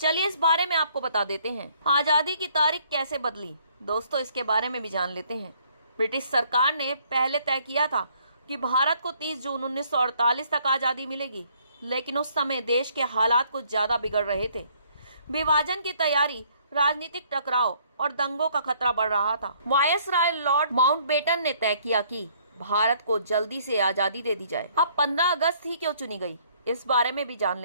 इस बारे में आपको बता देते हैं। आज़ादी की तारीख कैसे बदली? दोस्तों, इसके बारे में भी जान लेते हैं। ब्रिटिश सरकार ने पहले तय किया था कि भारत को 30 जून 1948 तक आज़ादी मिलेगी, लेकिन उस समय देश के हालात कुछ ज्यादा बिगड़ रहे थे। विभाजन की तैयारी, राजनीतिक टकराव और दंगों का खतरा बढ़ रहा था। वायसराय लॉर्ड माउंटबेटन ने तय किया कि भारत को जल्दी से आज़ादी दे दी जाए। अब 15 अगस्त ही क्यों चुनी गई, इस बारे में भी जान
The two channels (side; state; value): both; inverted; correlation -0.63